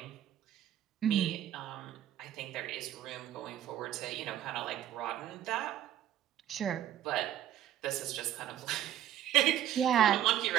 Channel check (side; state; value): left; quieter; 11.5 dB